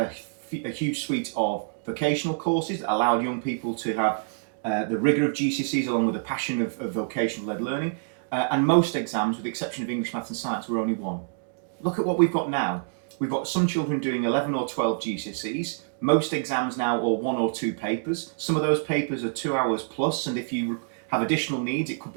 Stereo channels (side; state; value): left; silent; digital silence